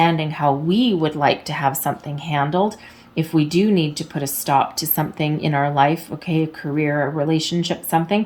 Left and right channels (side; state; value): both; identical; correlation 1.00